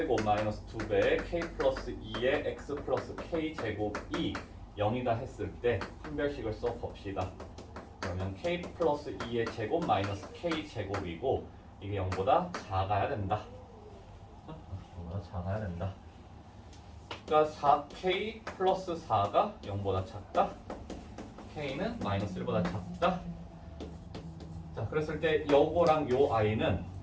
마이너스 2배의 k 플러스 2의 x 플러스 k 제곱이 0이다 했을 때 판별식을 써봅시다. 그러면 k 플러스 2의 제곱 마이너스 k 제곱이고 이게 0보다 작아야 된다. 0보다 작아야 된다. 그러니까 4k 플러스 4가 0보다 작다. k는 마이너스 1보다 작다. 자, 그랬을 때 요거랑 요 i는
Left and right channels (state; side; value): identical; both; correlation 1.00